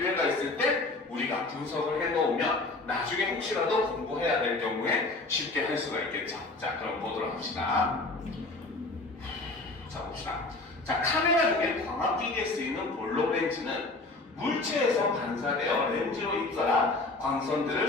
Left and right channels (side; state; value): right; quieter; 3.2 dB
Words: 있을 때 우리가 분석을 해놓으면 나중에 혹시라도 공부해야 될 경우에 쉽게 할 수가 있겠죠. 자, 그럼 보도록 합시다. 자, 봅시다. 자, 카메라 중에 광학기기에 쓰이는 볼록 렌즈는 물체에서 반사되어 렌즈로 입설한 광선들을